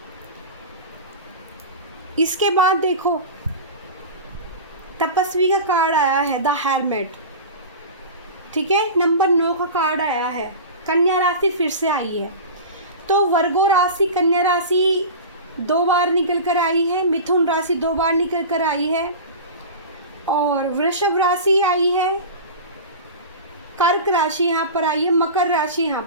इसके बाद देखो तपस्वी का कार्ड आया है, द हेरमिट, ठीक है। नंबर 9 का कार्ड आया है, कन्या राशि फिर से आई है। तो वर्गो राशि, कन्या राशि 2 बार निकल कर आई है, मिथुन राशि 2 बार निकल कर आई है, और वृषभ राशि आई है, कर्क राशि यहाँ पर आई है, मकर राशि यहाँ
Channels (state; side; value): inverted; both; correlation -0.31